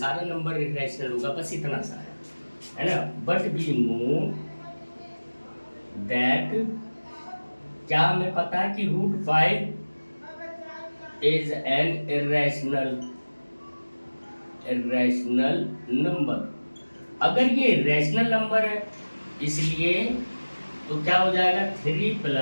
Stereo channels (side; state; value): both; inverted; correlation -1.00